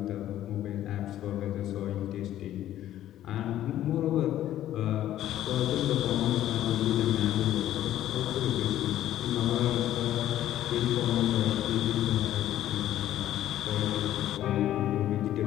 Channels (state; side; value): quieter; right; 12.6 dB